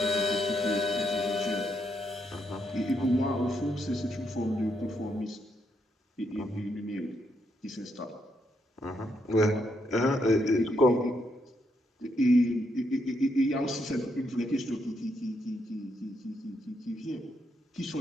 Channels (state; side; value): normal; both; correlation 0.78